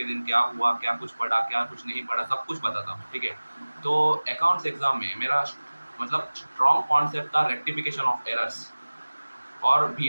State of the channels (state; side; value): inverted; both; correlation -1.00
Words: दिन क्या हुआ, क्या कुछ पढ़ा, क्या कुछ नहीं पढ़ा, सब कुछ बताता हूँ, ठीक है? तो अकाउंट्स एग्ज़ाम में मेरा मतलब स्ट्रॉन्ग कॉन्सेप्ट था रेक्टिफिकेशन ऑफ एरर्स और